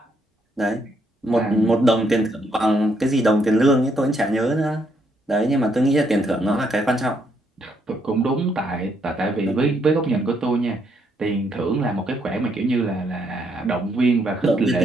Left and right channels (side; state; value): both; normal; correlation 0.74